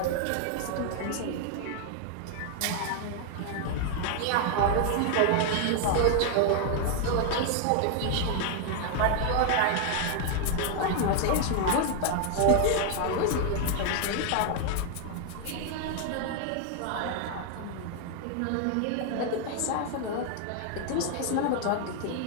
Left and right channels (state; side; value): different; both; correlation 0.00